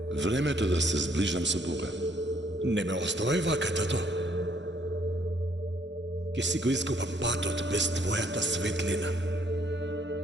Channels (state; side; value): normal; both; correlation 0.66